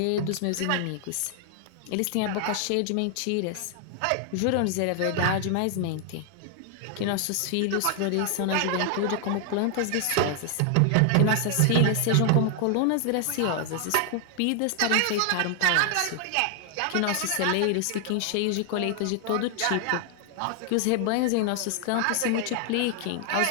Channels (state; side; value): different; both; correlation 0.00